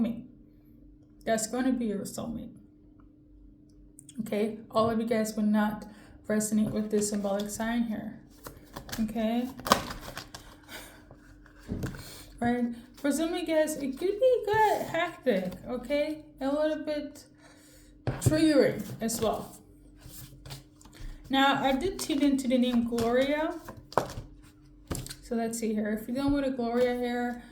That's going to be your soulmate. Okay, all of you guys would not resonate with this symbolic sign here. Okay. Right, for some of you guys, it could be good, hectic, okay? A little bit triggering as well. Now, I did tune into the name Gloria. So let's see here. If you're dealing with a Gloria here,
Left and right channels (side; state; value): both; identical; correlation 1.00